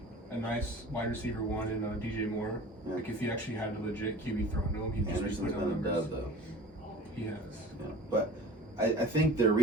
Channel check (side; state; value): both; normal; correlation 0.41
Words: A nice wide receiver one in DJ Moore. Yeah. Like if he actually had a legit QB thrown to him, he'd just put down numbers. Though. He has. Yeah. But I think their